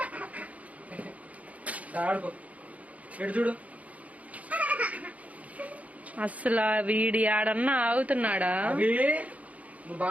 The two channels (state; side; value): late; left; 0.069 ms